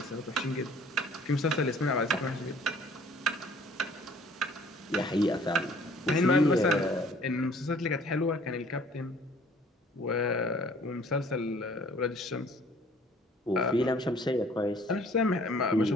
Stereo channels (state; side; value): normal; both; correlation 0.54